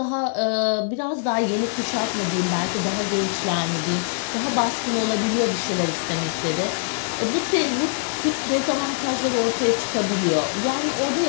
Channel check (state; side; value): silent; right; digital silence